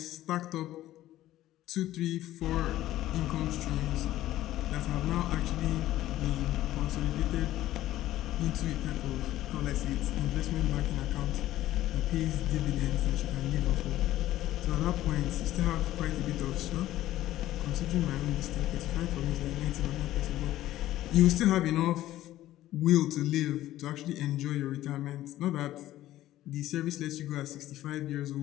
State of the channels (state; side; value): quieter; right; 14.4 dB